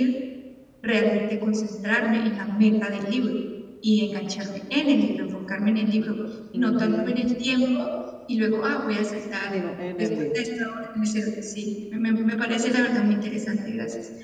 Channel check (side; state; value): both; identical; correlation 1.00